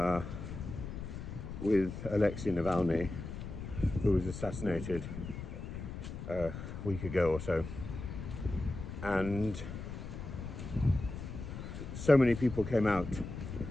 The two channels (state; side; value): noise; left; rumble, 8 dB below the sound